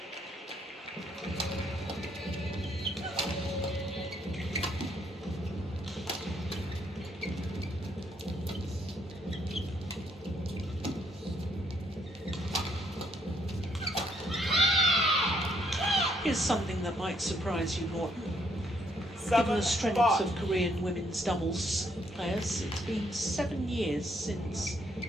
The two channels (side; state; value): both; normal; correlation 0.71